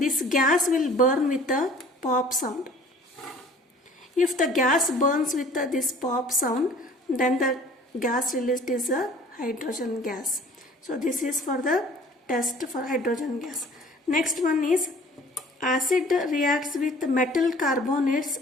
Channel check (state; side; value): normal; both; correlation 0.50